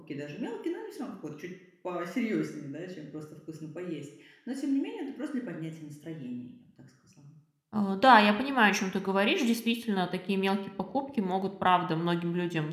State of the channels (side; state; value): both; identical; correlation 1.00